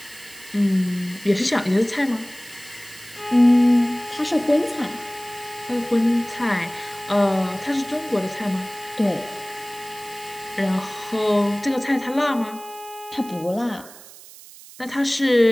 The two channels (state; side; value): noise; right; hiss, 19 dB below the sound